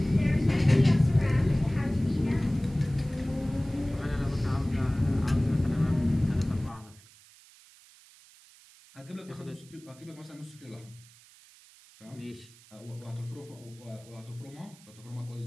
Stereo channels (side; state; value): right; noise; hiss, 25 dB below the sound